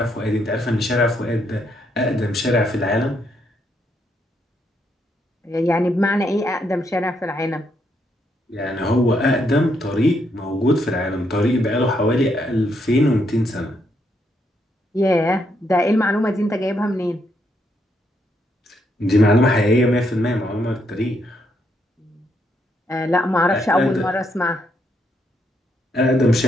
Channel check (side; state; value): both; normal; correlation 0.76